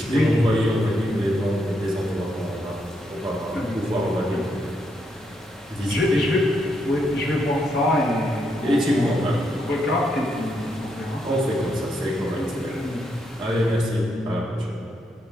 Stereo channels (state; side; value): normal; both; correlation 0.79